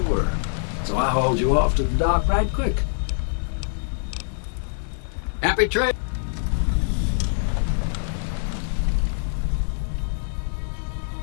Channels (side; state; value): right; silent; digital silence